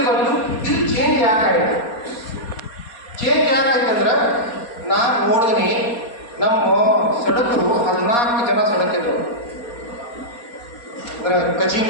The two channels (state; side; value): late; right; 4.2 ms